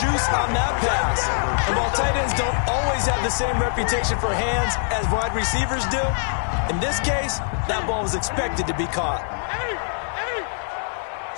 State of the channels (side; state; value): right; silent; 62 dB below the other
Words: on that pass. And while tight ends don't always have the same reputation for hands as wide receivers do, in this case, that ball was expected to be caught.